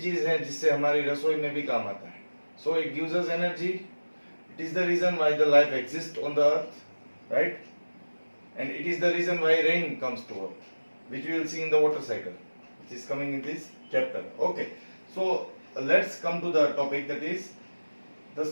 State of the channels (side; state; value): both; inverted; correlation -1.00